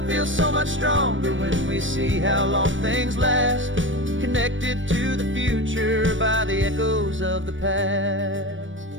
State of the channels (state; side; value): late; left; 0.56 ms